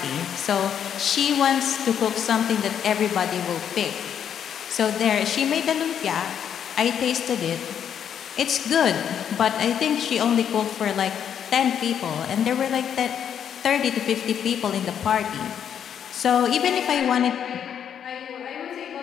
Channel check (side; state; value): right; quieter; 8.7 dB